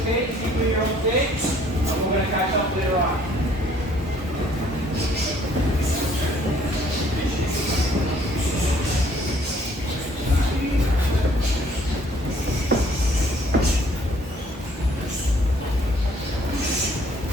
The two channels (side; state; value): both; normal; correlation 0.61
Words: Just keep doing your own thing. And we're going to catch up later on.